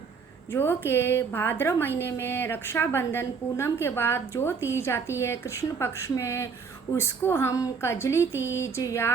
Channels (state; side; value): quieter; left; 5.6 dB